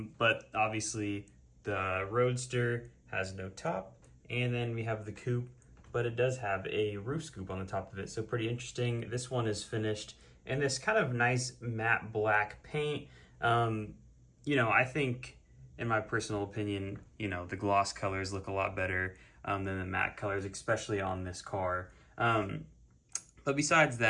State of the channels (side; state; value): both; identical; correlation 1.00